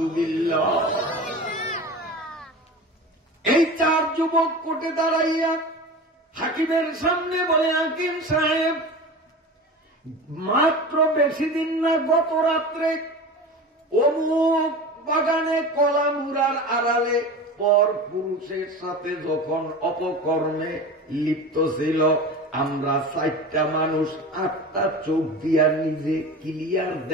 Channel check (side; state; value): both; normal; correlation 0.32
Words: এই 4 যুবক কোর্টে দাঁড়াইয়া হাকিমের সামনে বলে, হাকিম সাহেব, মাত্র বেশি দিন না, গত রাত্রে অমুক বাগানে কলামুরার আড়ালে পর পুরুষের সাথে যখন অপকর্মে লিপ্ত ছিল, আমরা 4টা মানুষ 8টা চোখ দিয়া নিজে ক্লিয়ার